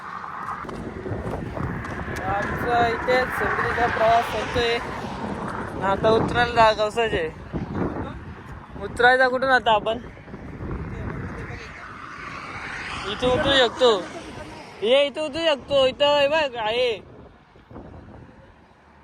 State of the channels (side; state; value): both; identical; correlation 1.00